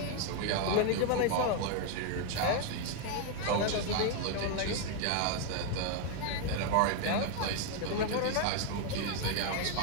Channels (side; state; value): both; different; correlation 0.01